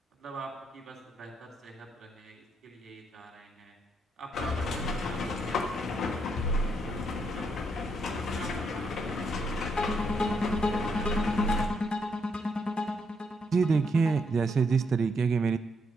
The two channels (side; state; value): both; normal; correlation 0.76